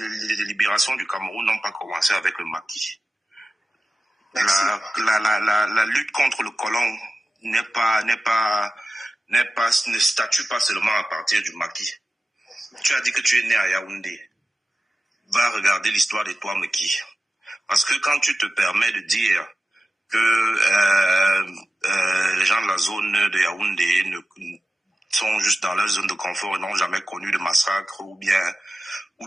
libération du Cameroun n'ont pas commencé avec le maquis. La lutte contre le colon ne statue pas seulement à partir du maquis. Tu as dit que tu es né à Yaoundé. Va regarder l'histoire de toi, Meki. Parce que quand tu te permets de dire que les gens de la zone de Yaoundé sont juste dans leur zone de confort et n'ont jamais connu de massacre ou bien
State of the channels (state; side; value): normal; both; correlation 0.95